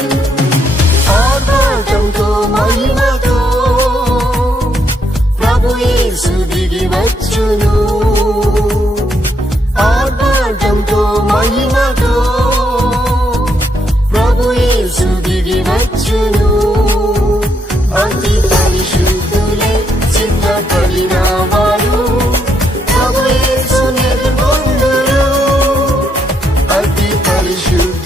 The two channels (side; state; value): both; normal; correlation 0.76